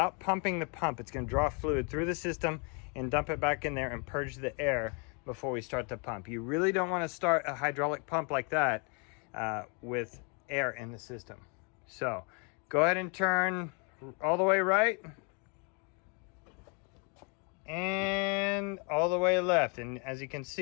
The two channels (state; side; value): quieter; right; 35.4 dB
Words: pumping the pump. It's gonna draw fluid through the system and dump it back in there and purge the air before we start the pump. You really don't want to start a hydraulic pump like that with air in the system. So go ahead and turn all the way right and all the way left, and as you can